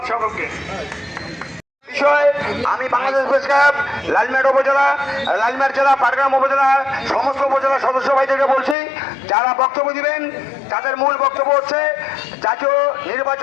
সকলকে। আমি বাংলাদেশ প্রেস ক্লাব লালমিরহাট জেলা, পাটগ্রাম উপজেলা সমস্ত উপজেলা সদস্য ভাইদেরকে বলছি, যারা বক্তব্য দিবেন তাদের মূল বক্তব্য হচ্ছে জাতীয়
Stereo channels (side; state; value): right; drops out; at 8.8 s